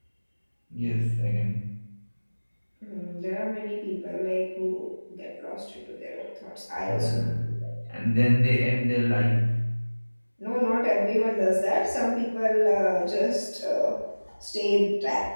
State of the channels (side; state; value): both; inverted; correlation -1.00